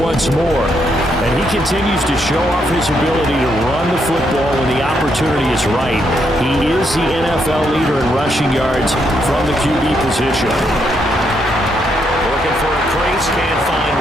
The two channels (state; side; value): normal; both; correlation 0.77